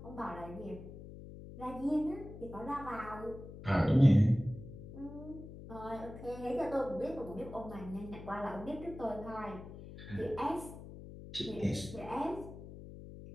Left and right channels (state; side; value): noise; left; hum, 13 dB below the sound